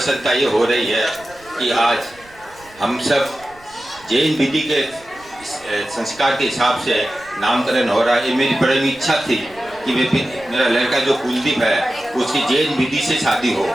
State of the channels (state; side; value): noise; right; rumble, 26 dB below the sound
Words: ये हो रही है कि आज हम सब जैन विधि के संस्कार के हिसाब से नामकरण हो रहा है। ये मेरी बड़ी इच्छा थी कि मेरा लड़का जो कुलदीप है उसकी जैन विधि से शादी हो,